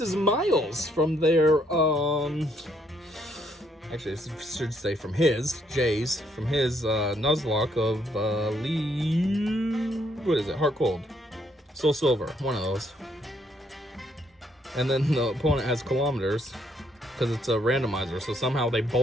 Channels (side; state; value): both; normal; correlation 0.70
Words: is Miles from their, actually, I should say from his, Jay's, from his, Nuzlocke of, what is it, Heart Cold. Soul Silver, one of those. And then the opponent has kilometers because it's a randomizer. So somehow they